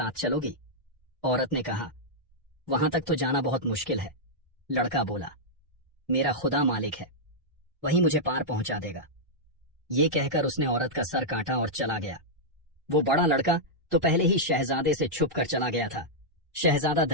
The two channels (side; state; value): both; normal; correlation -0.08